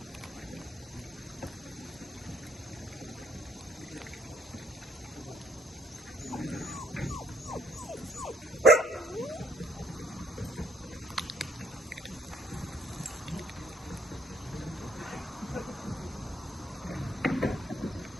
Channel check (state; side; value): normal; both; correlation 0.68